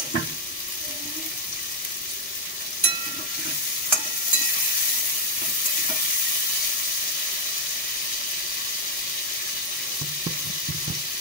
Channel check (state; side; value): normal; both; correlation 0.01